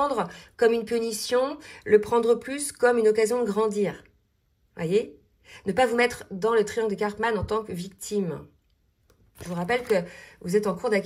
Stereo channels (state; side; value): identical; both; correlation 1.00